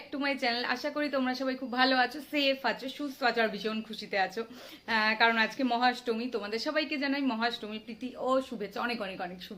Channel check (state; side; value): identical; both; correlation 1.00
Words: to my channel. आशा करी तुम्हारा सबाई खूब भालो आछो, सेफ आछो, सुस्थ आछो और भीषण खुशीते आछो कारण आज के महाअष्टमी। तुम्हारे सबाइके जानाई महाअष्टमी प्रীতি ओ शुभेच्छा, अनेक अनेक अनेक